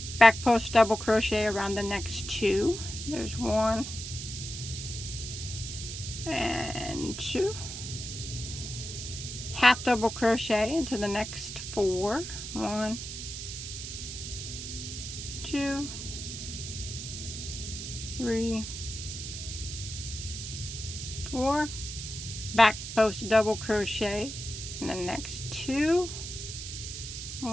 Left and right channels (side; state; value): right; noise; hiss, 8 dB below the sound